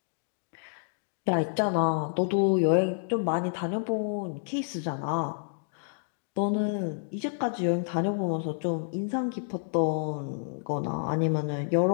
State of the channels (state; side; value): silent; right; digital silence